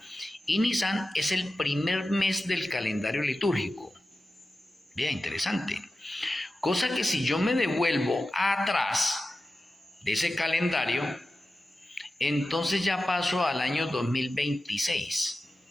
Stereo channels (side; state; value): both; normal; correlation 0.93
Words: Y Nisan es el primer mes del calendario litúrgico. Bien, interesante. Cosa que si yo me devuelvo atrás de ese calendario, entonces ya paso al año 2026.